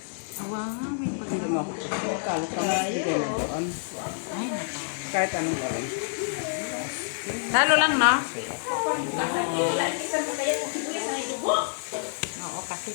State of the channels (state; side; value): silent; right; 60 dB below the other